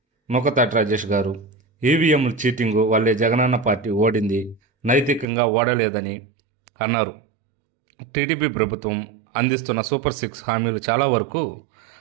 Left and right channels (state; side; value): drops out; left; at 5.2 s